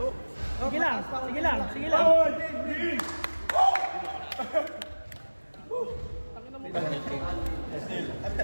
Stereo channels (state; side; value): inverted; both; correlation -1.00